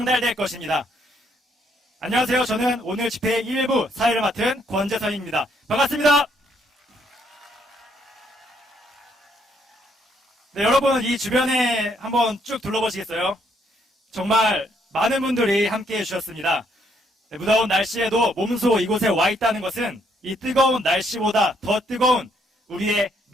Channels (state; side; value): normal; both; correlation 0.70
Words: 것입니다. 안녕하세요. 저는 오늘 집회의 일부 사회를 맡은 권재선입니다. 반갑습니다. 네, 여러분 이 주변에 한번 쭉 둘러보시겠어요? 정말 많은 분들이 함께 해주셨습니다. 네, 무더운 날씨에도 몸소 이곳에 와 있다는 것은 이 뜨거운 날씨보다 더 뜨거운 우리의